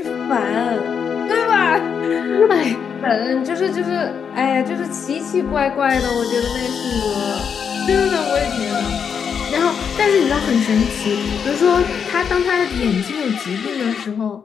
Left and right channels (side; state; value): right; quieter; 7.0 dB